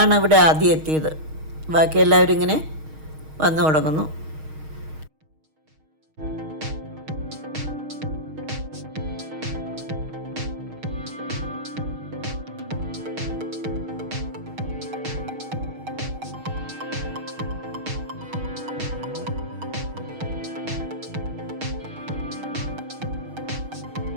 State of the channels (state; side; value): late; left; 6.4 ms